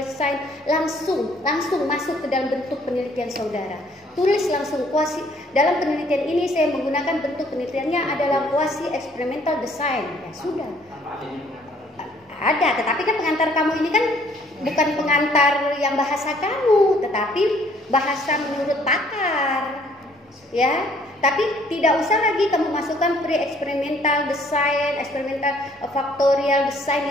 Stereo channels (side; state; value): both; normal; correlation 0.61